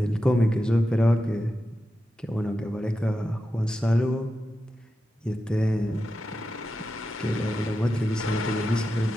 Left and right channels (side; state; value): both; normal; correlation 0.90